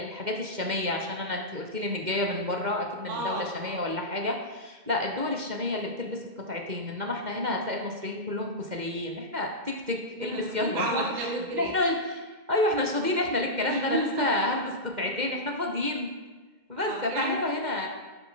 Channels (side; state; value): left; late; 2.1 ms